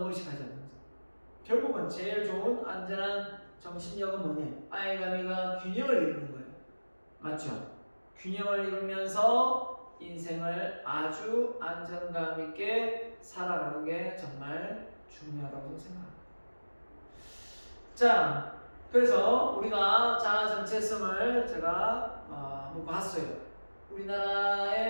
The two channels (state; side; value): inverted; both; correlation -1.00